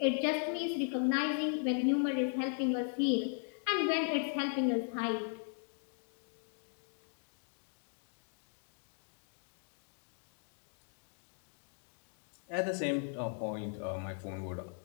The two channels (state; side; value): silent; right; 53 dB below the other